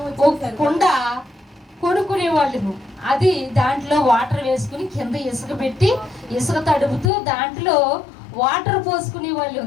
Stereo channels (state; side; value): drops out; right; at 7.1 s